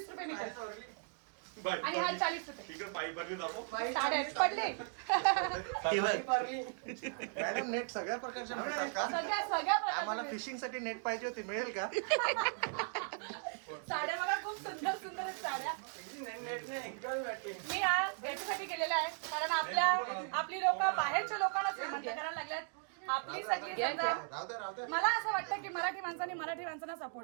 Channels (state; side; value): silent; left; 53 dB below the other